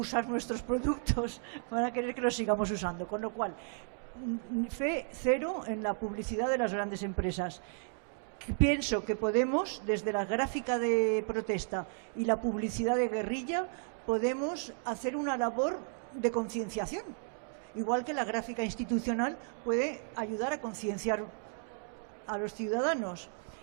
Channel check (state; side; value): silent; left; 55 dB below the other